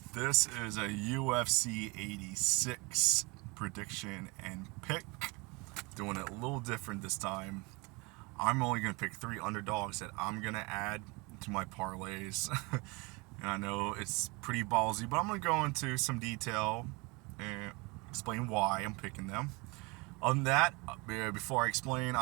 This is a UFC 86 prediction and pick. Doing it a little different this time. I'm only going to pick 3 underdogs that I'm going to add to my parlays. And I know it's pretty ballsy, but I'm going to go into some detail and explain why I'm picking them. Other than that, before I explain,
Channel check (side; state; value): left; quieter; 27.1 dB